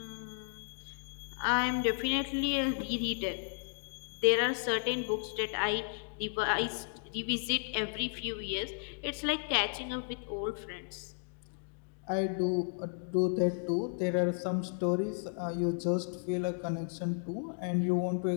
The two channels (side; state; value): right; silent; digital silence